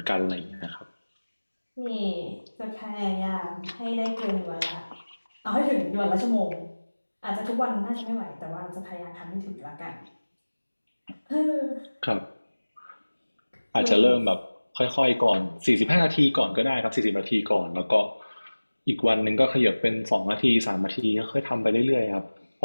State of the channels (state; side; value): inverted; both; correlation -1.00